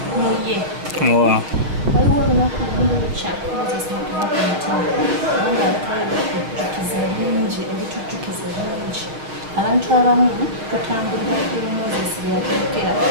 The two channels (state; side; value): late; left; 6.6 ms